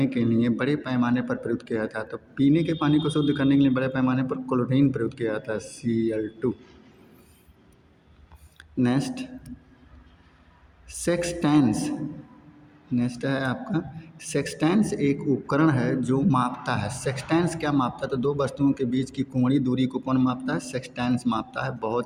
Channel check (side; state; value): both; identical; correlation 1.00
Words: के लिए बड़े पैमाने पर प्रयुक्त किया जाता है? तो पीने के पानी को शुद्ध करने के लिए बड़े पैमाने पर क्लोरीन प्रयुक्त किया जाता है, Cl2। नेक्स्ट, सेक्सटेंस। नेक्स्ट है आपका सेक्सटेंस एक उपकरण है जो मापता है। सेक्सटेंस क्या मापता है? तो दो वस्तुओं के बीच की कोणीय दूरी को कौन मापता है? सेक्सटेंस मापता है।